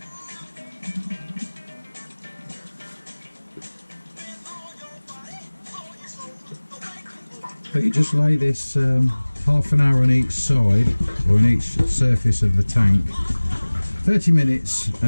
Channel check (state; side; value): inverted; both; correlation -1.00